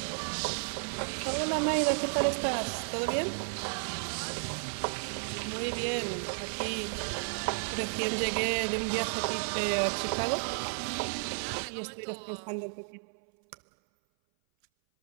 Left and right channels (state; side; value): silent; left; 56 dB below the other